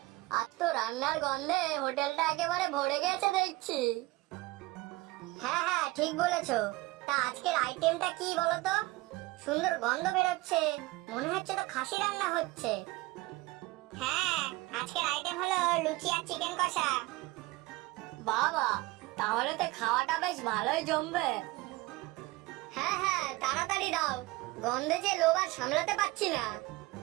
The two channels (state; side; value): quieter; left; 20.6 dB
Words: আজ তো রান্নার গন্ধে হোটেলটা একেবারে ভরে গেছে দেখছি। হ্যাঁ হ্যাঁ, ঠিক বলেছো। তা আজকের আইটেমটা কি বলো তো? সুন্দর গন্ধ বেরোচ্ছে, মনে হচ্ছে তো খাসি রান্না হচ্ছে। হ্যাঁ, আজকের আইটেম হলো লুচি আর চিকেন কষা। বাবা, তাহলে তো খাওয়াটা বেশ ভালোই জমবে। হ্যাঁ হ্যাঁ, তাড়াতাড়ি দাও, গন্ধে যে লোভ আর সামলাতে পারছি না।